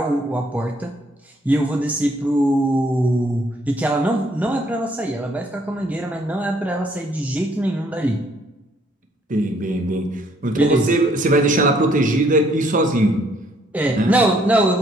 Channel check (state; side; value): normal; both; correlation 0.66